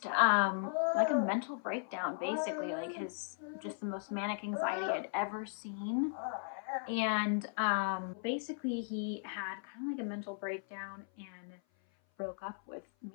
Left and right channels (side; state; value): right; silent; 53 dB below the other